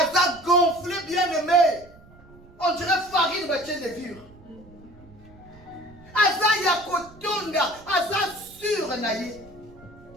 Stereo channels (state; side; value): noise; right; rumble, 23 dB below the sound